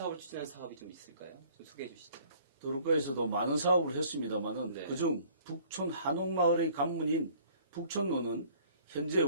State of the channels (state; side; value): inverted; both; correlation -0.55